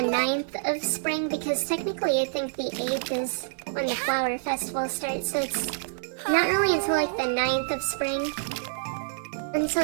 9th of spring, because technically I think the 8th is when the flower festival starts, so it's not really until until like the 9th of spring.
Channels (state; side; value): silent; left; digital silence